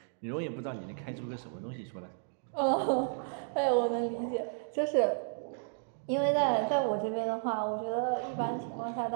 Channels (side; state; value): left; silent; digital silence